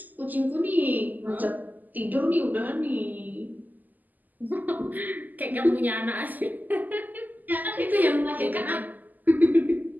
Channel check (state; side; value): late; left; 0.083 ms